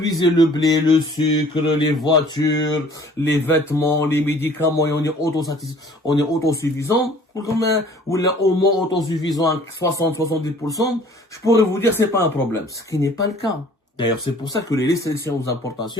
le blé, le sucre, les voitures, les vêtements, les médicaments, et on est autosuffisant, ou là, au moins autosuffisant à 60-70%, je pourrais vous dire c'est pas un problème. Ce qui n'est pas le cas. D'ailleurs, c'est pour ça que les restrictions aux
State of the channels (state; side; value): normal; both; correlation 0.53